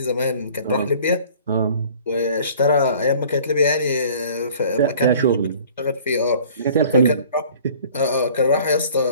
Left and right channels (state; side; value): inverted; both; correlation -0.50